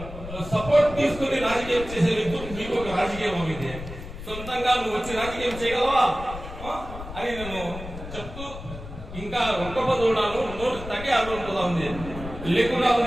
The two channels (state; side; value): noise; left; rumble, 11 dB below the sound